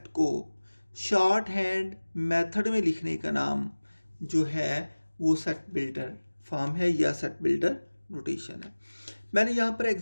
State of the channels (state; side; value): inverted; both; correlation -1.00